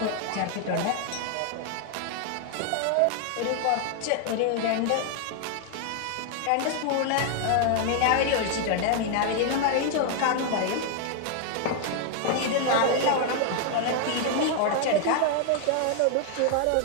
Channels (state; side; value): different; both; correlation 0.00